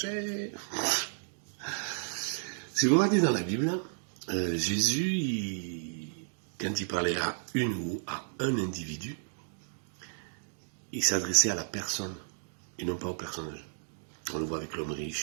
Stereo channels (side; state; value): left; silent; digital silence